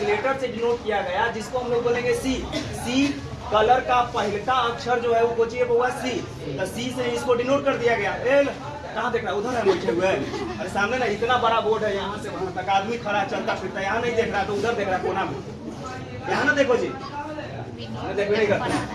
लेटर से डिनोट किया गया जिसको हम लोग बोलेंगे C। कलर का पहला अक्षर जो है वो कोचिए हुआ C। तो C से इसको डिनोट कर दिया गया। कहाँ देख रहा है? उधर है बैठे हुए। अरे सामने ना इतना बड़ा बोर्ड है, यहाँ से वहां तक आदमी खड़ा चलता फिरता। यहाँ नहीं देख रहा तो उधर देख रहा कोना में। यहाँ ना देखो जी, देखो नहीं करता।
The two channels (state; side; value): identical; both; correlation 1.00